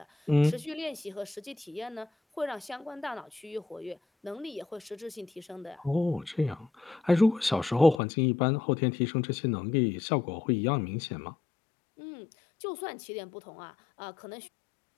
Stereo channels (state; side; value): drops out; right; at 8.0 s